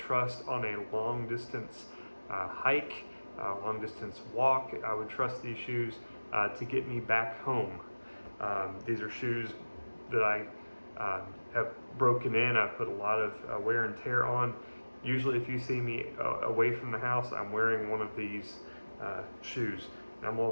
on a long distance hike, long distance walk. I would trust these shoes to get me back home. These are shoes that I have broken in. I've put a lot of wear and tear on. Usually if you see me away from the house, I'm wearing one of these shoes. And I'm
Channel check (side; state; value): both; inverted; correlation -1.00